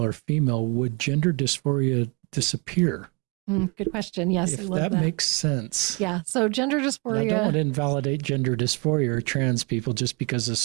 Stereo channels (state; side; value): quieter; left; 30.2 dB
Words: or female, would gender dysphoria disappear? Good question. Yes, I If love that that. makes sense. Yeah. So gender And I don't want dysphoria. to invalidate gender dysphoria or trans people just because of